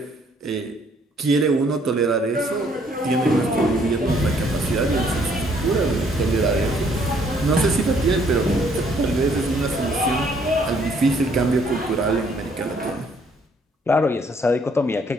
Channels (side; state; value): both; normal; correlation 0.65